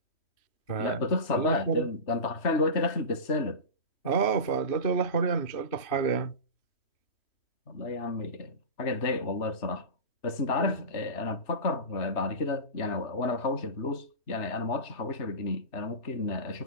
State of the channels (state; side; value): late; right; 3.3 ms